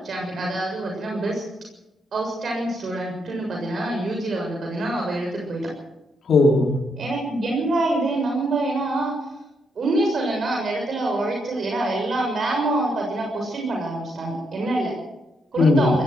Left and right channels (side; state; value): both; normal; correlation 0.77